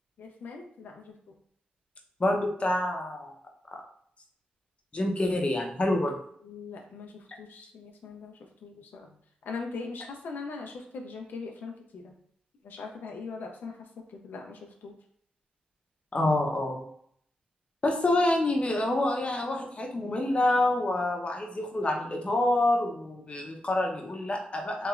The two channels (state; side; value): normal; both; correlation 0.87